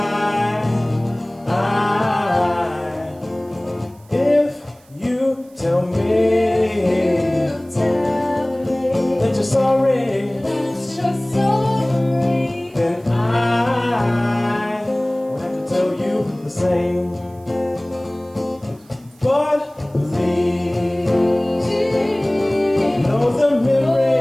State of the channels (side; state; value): right; noise; hiss, 30 dB below the sound